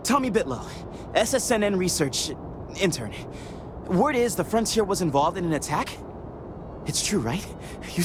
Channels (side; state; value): both; identical; correlation 1.00